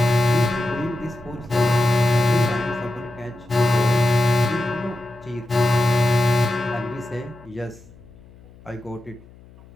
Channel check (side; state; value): left; noise; hum, 23 dB below the sound